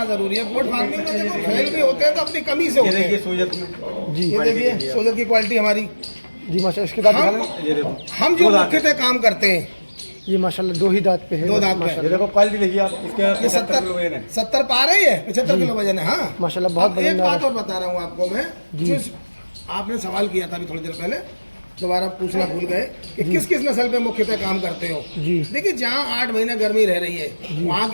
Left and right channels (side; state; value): both; inverted; correlation -1.00